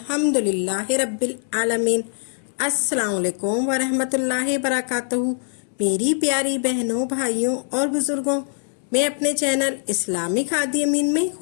رب العالمین۔ السلام علیکم ورحمۃ اللہ وبرکاتہ۔ میری پیاری بہنوں، بھائیوں اور بزرگوں، میں اپنے چینل اسلامی کھادی امین میں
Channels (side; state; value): right; silent; 64 dB below the other